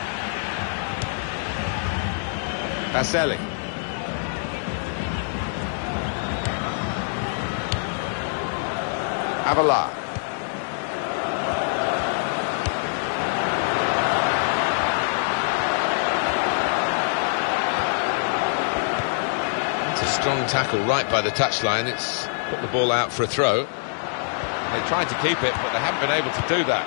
Baselli. Avila. It's a strong tackle right by the touchline. It's put the ball out for a throw. They tried to keep it, but they haven't been able to do that.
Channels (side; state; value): right; silent; digital silence